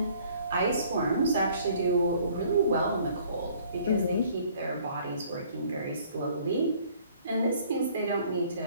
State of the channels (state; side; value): inverted; both; correlation -0.57